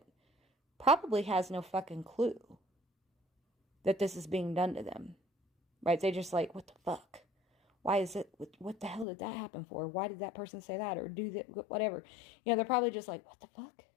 probably has no fucking clue that this is being done to them. Right? They just like, what the fuck? Why is it, what the hell did that happen for? Why did that person say that or do that, whatever? They're probably just like, what the fuck?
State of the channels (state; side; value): drops out; right; at 9.1 s